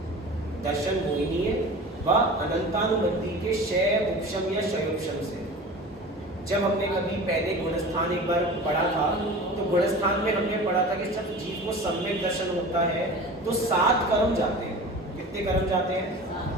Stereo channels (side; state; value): both; normal; correlation 0.37